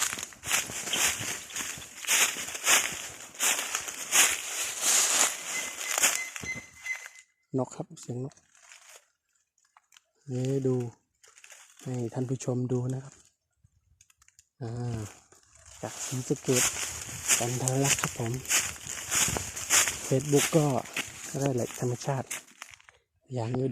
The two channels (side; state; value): both; identical; correlation 1.00